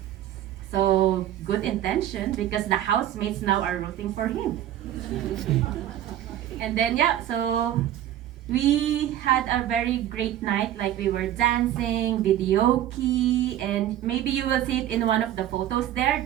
So good intention, because the housemates now are rooting for him. And then so we had a very great night. Like we were dancing, videoke, and maybe you will see it in one of the photos there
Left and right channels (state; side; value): quieter; left; 12.1 dB